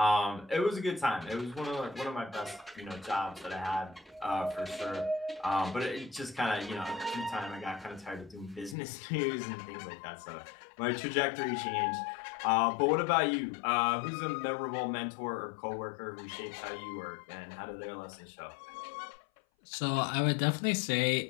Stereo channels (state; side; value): drops out; right; at 8.8 s